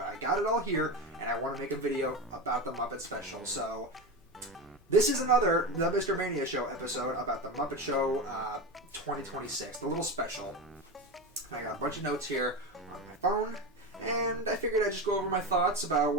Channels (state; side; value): normal; both; correlation 0.21